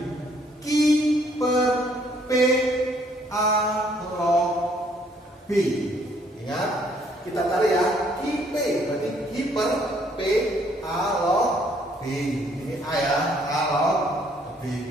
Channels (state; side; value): normal; both; correlation 0.65